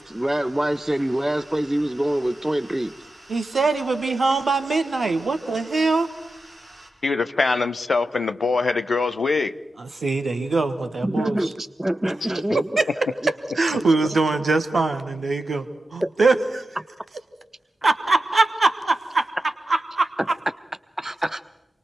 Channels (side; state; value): both; normal; correlation 0.91